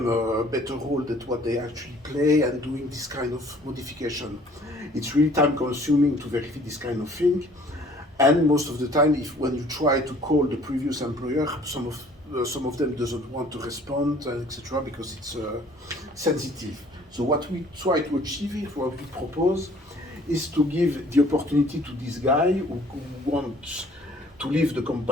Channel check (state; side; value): normal; both; correlation 0.55